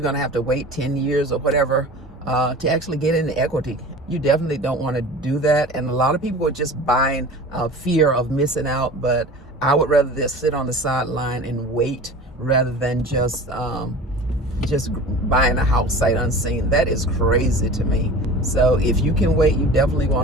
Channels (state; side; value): normal; both; correlation 0.38